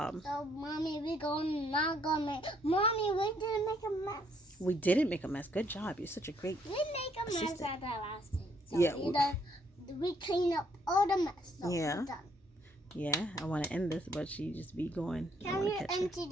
So, Mommy, we didn't make a mess. We didn't make a mess. Good job. You're such a great We make a mess assistant. at the last thing. So Yeah. we clean up all the mess. So Yeah. we're done. Yeah, I want to end this, but she just be going. Can we empty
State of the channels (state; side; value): normal; both; correlation 0.68